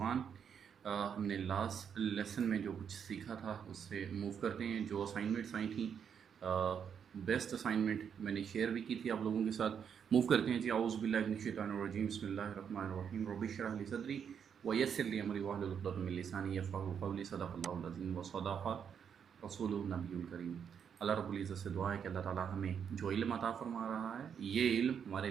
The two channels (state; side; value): quieter; left; 7.6 dB